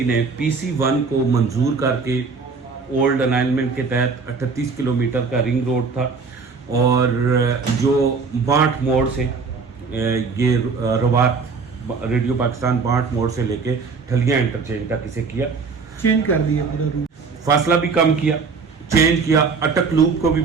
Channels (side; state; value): left; quieter; 4.9 dB